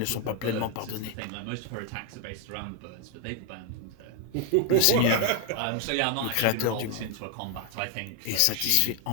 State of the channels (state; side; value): different; both; correlation 0.01